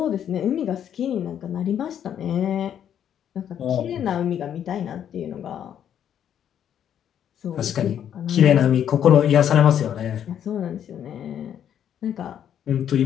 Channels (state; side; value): quieter; right; 9.5 dB